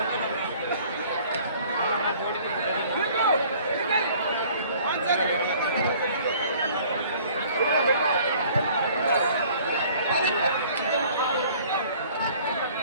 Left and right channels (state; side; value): inverted; both; correlation -0.53